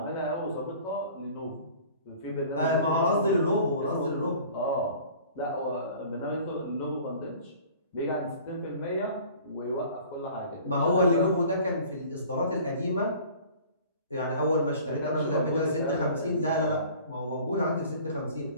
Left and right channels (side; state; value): both; inverted; correlation -0.47